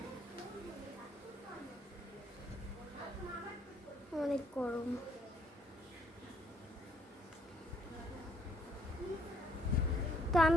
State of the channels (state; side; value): normal; both; correlation 0.67